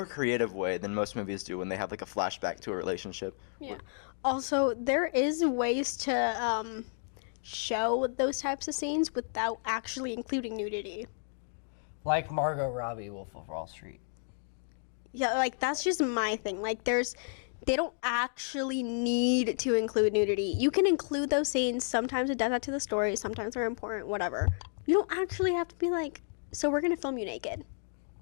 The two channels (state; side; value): silent; right; digital silence